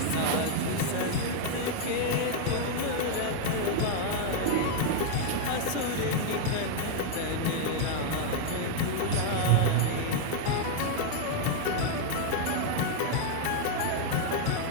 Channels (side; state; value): both; different; correlation 0.00